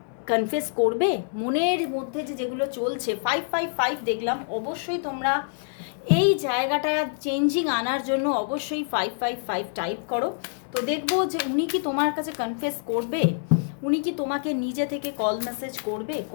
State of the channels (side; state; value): right; silent; digital silence